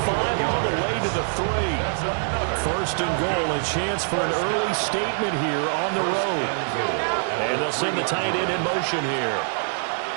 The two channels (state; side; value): silent; left; digital silence